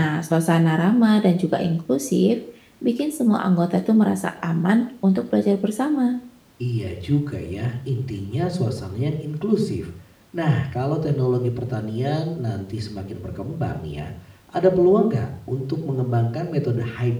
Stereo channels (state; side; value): identical; both; correlation 1.00